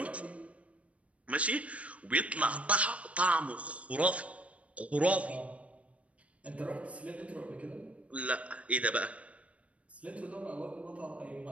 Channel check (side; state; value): left; late; 0.064 ms